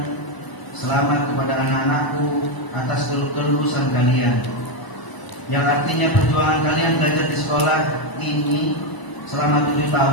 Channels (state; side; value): late; right; 1.0 ms